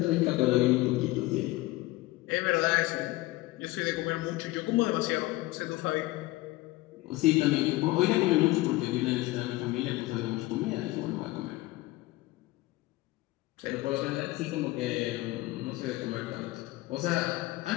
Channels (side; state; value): right; quieter; 19.1 dB